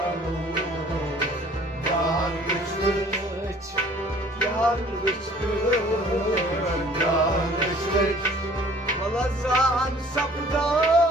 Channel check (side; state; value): both; normal; correlation 0.53